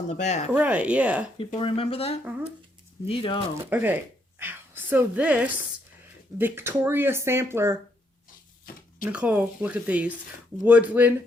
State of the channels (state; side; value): normal; both; correlation 0.74